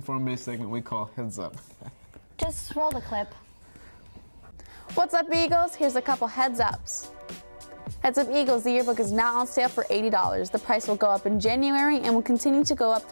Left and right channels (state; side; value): inverted; both; correlation -1.00